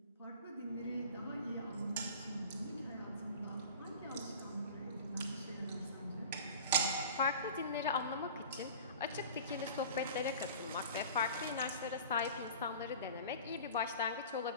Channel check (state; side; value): inverted; both; correlation -0.40